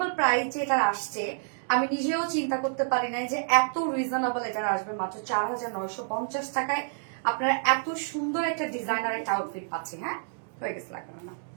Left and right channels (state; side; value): silent; left; digital silence